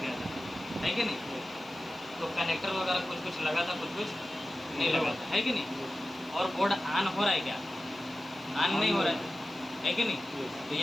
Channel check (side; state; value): left; noise; hiss, 28 dB below the sound